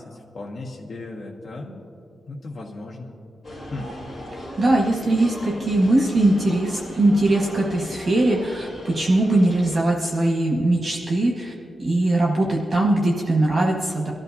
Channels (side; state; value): both; normal; correlation 0.90